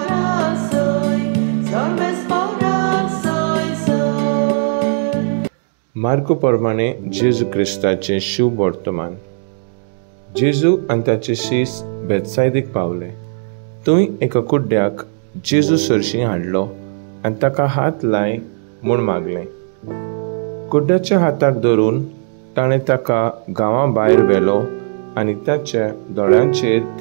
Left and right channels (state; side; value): silent; left; digital silence